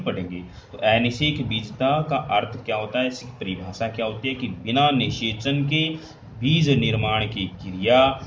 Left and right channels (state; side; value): identical; both; correlation 1.00